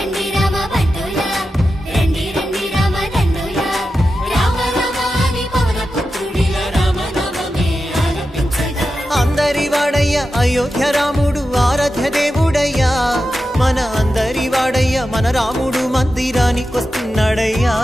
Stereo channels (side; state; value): both; normal; correlation 0.91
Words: రామ బంటులా, రండి రండి రామ దండులా, రామ రామ నీ పవన పుత్రుడిలా రామ నామమే ఆలపించగా. అందరి వాడయ్య అయోధ్య రాముడు ఆరాధ్య దేవుడయ్యా, మన అందరి వాడయ్య మన రాముడు మందిరానికొస్తున్నాడయ్యా.